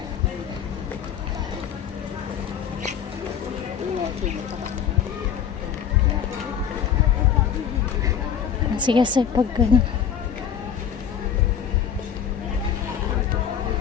Sige sa pag ano.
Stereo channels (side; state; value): right; quieter; 8.2 dB